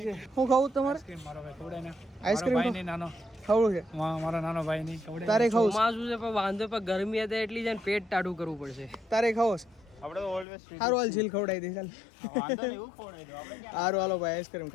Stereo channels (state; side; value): drops out; right; at 10.5 s